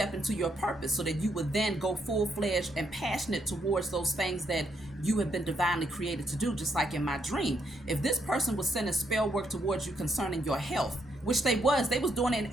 into your purpose, so that you would then go full-fledged and passionate towards those things that you have been divinely created to do. Just like in my dream, if this person was sending spell work towards you concerning your health, which they was doing it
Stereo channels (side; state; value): both; normal; correlation 0.76